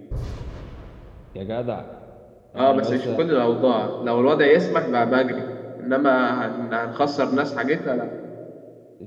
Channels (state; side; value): identical; both; correlation 1.00